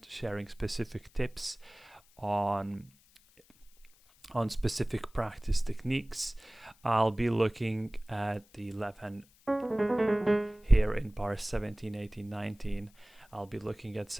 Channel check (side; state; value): left; noise; hiss, 29 dB below the sound